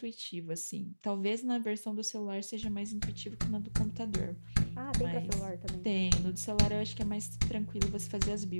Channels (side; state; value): both; inverted; correlation -1.00